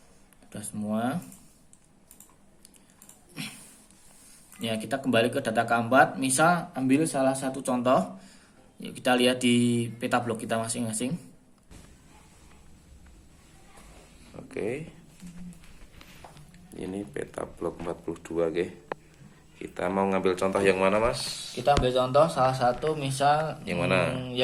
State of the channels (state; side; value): identical; both; correlation 1.00